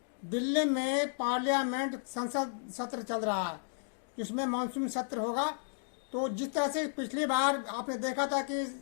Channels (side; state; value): right; silent; digital silence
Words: दिल्ली में पार्लियामेंट संसद सत्र चल रहा है, जिसमें मानसून सत्र होगा। तो जिस तरह से पिछली बार आपने देखा था कि